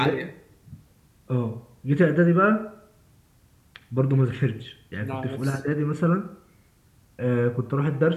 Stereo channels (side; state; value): both; identical; correlation 1.00